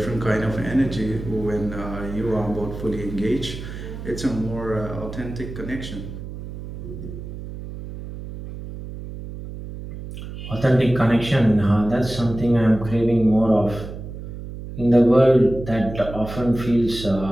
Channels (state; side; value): noise; right; hum, 10 dB below the sound